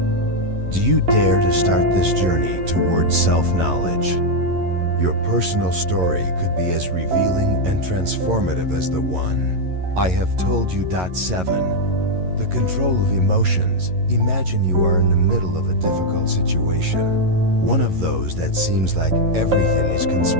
Do you dare to start this journey towards self-knowledge? Your personal story could be as revealing and transformative as the one I have told you. 7. The control of emotions. Imagine you are in the middle of a difficult situation, one of those that seems like everything is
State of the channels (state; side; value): late; left; 11 ms